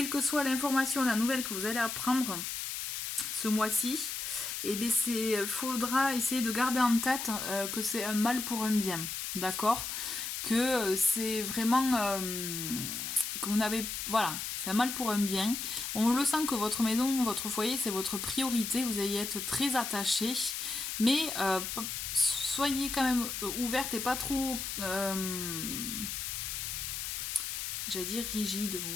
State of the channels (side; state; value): left; noise; hiss, 4 dB below the sound